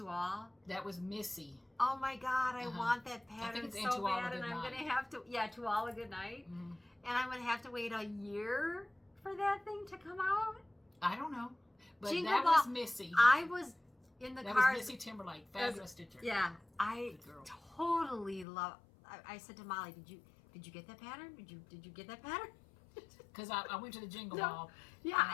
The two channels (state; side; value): drops out; right; at 18.4 s